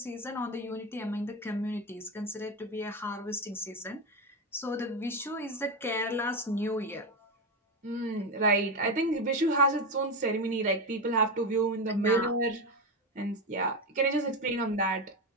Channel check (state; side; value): normal; both; correlation 0.14